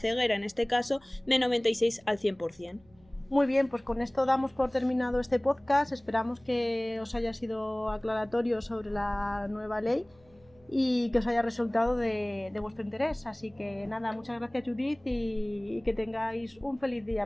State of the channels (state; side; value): noise; right; hum, 30 dB below the sound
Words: en este caso, de 96 al 100%. Muy bien, pues con esto damos por terminado este podcast. Esperamos que os haya sido aclaratorio sobre la nueva ley y que os haya resultado de vuestro interés. Así que nada, muchas gracias Judith y que tengáis un feliz